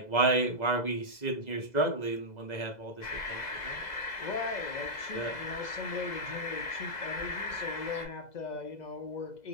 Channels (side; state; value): right; late; 2.0 ms